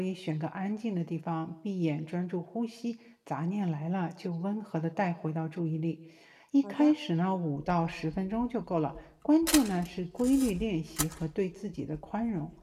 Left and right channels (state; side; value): identical; both; correlation 1.00